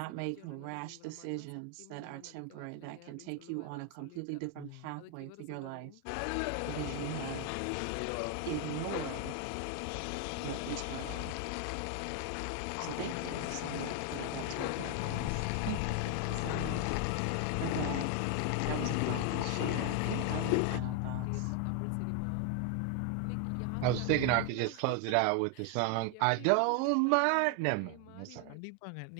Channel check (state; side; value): different; both; correlation 0.00